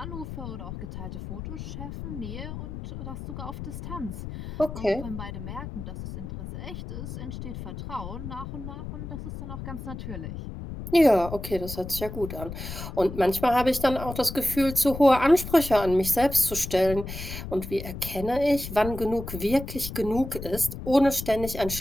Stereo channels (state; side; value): noise; left; rumble, 8 dB below the sound